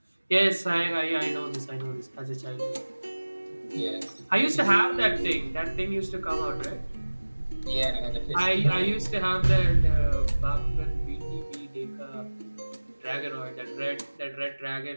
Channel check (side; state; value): both; inverted; correlation -1.00